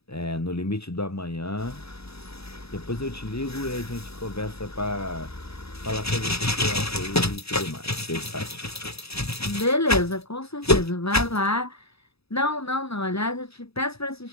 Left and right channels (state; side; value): late; right; 0.78 ms